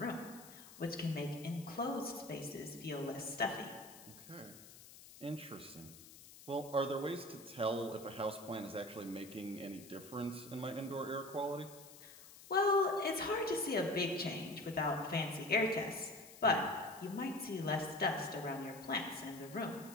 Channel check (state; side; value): noise; left; hiss, 18 dB below the sound